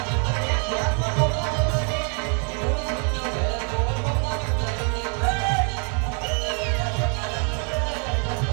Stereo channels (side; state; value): left; quieter; 39.9 dB